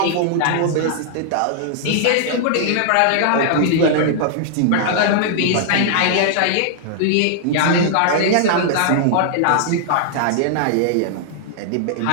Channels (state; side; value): different; both; correlation -0.01